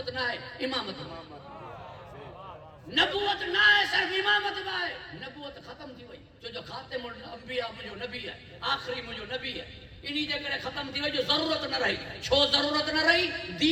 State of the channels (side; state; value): both; identical; correlation 1.00